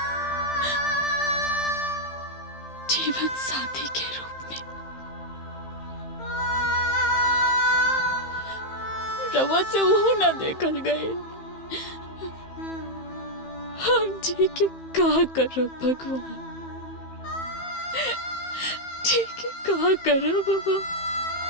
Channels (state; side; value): late; right; 15 ms